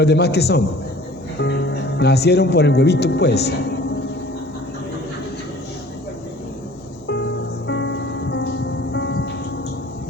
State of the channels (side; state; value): both; normal; correlation 0.49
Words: demás qué son? Nacieron por el huevito, pues.